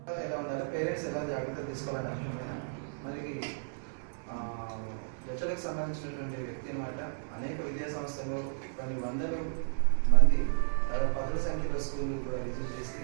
ఎలా ఉండాలి, పేరెంట్స్ ఎలా జాగ్రత్తలు తీసుకోవాలని అర్థమైనా మనకి హెచ్ఎల్కి సంబంధించినటువంటి వ్యక్తి అనమాట. అనేక విద్యా సంస్థలు కొన్ని వందల మంది పదుల సంఖ్యలో స్కూళ్ళు కూడా విజిట్ చేసి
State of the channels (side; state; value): left; silent; digital silence